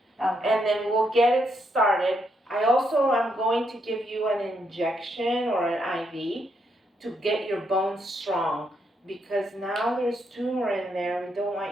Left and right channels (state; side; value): normal; both; correlation 0.77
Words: Okay. and then we'll get it started. I also am going to give you an injection or an IV to get your bones strong, because now there's tumor in there, we don't